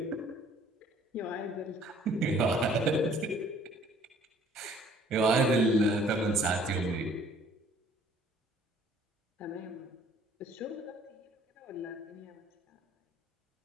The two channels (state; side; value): normal; both; correlation 0.57